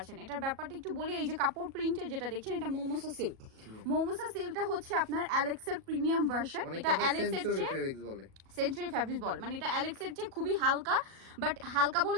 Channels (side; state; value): left; late; 37 ms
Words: এটার ব্যাপারটা একটু বলি, এই যে কাপড় প্রিন্টের যেটা দেখছেন এটা মোমোসা সিল্ক। মোমোসা সিল্কটা হচ্ছে আপনার অ্যালেক্সের প্রিমিয়াম ভার্সন। এটা সেঞ্চুরি ফ্যাব্রিক্স বলে, মানে এটা অ্যালেক্সের চেয়ে খুবই হালকা। বাট হালকা বলে